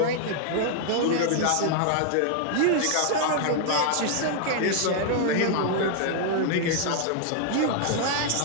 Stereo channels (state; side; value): different; both; correlation 0.00